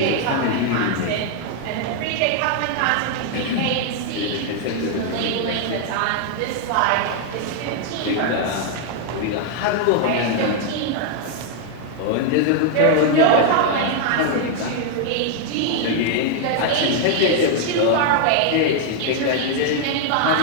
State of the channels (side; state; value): both; different; correlation 0.00